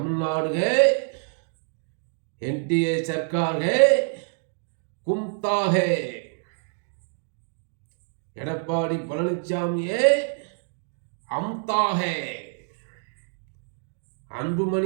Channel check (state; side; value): silent; left; digital silence